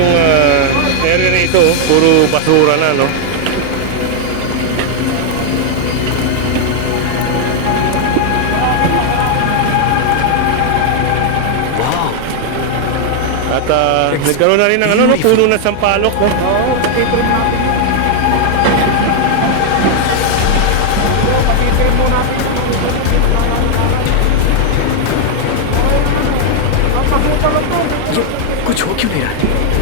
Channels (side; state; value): both; different; correlation 0.00